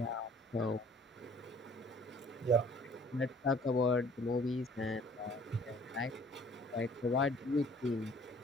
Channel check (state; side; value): normal; both; correlation 0.55